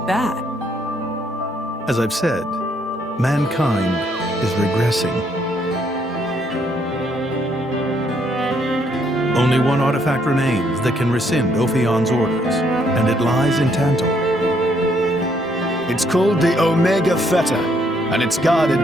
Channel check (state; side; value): normal; both; correlation 0.70